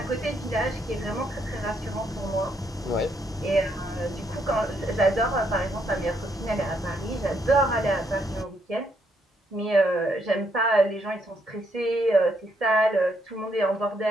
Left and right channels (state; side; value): normal; both; correlation 0.74